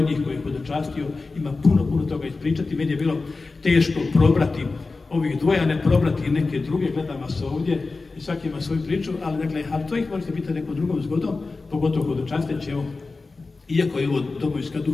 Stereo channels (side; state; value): right; quieter; 3.8 dB